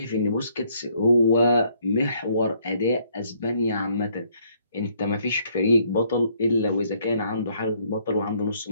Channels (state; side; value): inverted; both; correlation -0.67